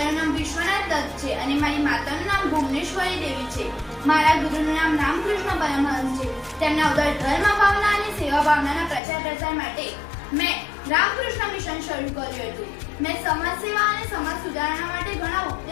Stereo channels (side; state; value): right; drops out; at 9.0 s